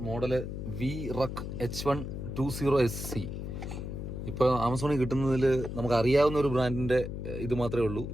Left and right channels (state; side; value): noise; left; hum, 6 dB below the sound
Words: model VRUC H120SC. ഇപ്പോൾ ആമസോണിൽ കിട്ടുന്നതിൽ നമുക്ക് അറിയാവുന്ന ഒരു ബ്രാൻഡിന്റെ ഇത് മാത്രമേ ഉള്ളൂ.